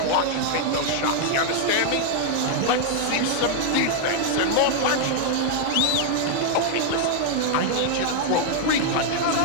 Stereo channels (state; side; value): different; both; correlation 0.00